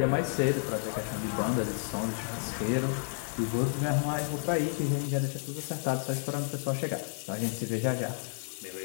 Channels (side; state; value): right; silent; digital silence